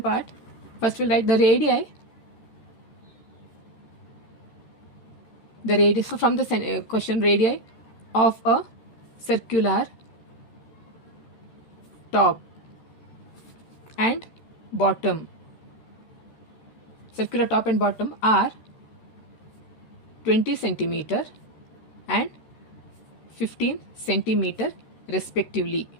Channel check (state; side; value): late; right; 13 ms